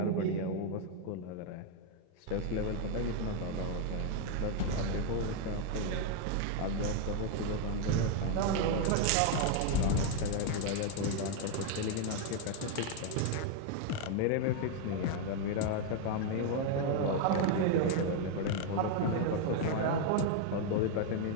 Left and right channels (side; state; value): both; different; correlation 0.01